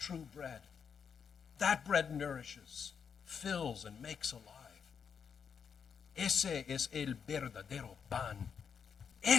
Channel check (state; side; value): quieter; right; 6.8 dB